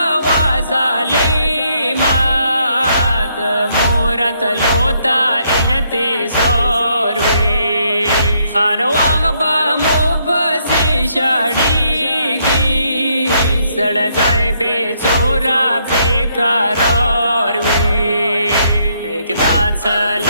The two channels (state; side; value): inverted; both; correlation -0.73